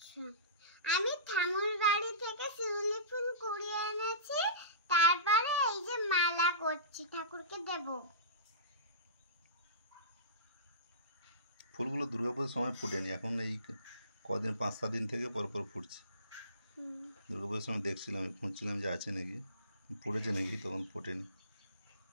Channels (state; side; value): inverted; both; correlation -0.31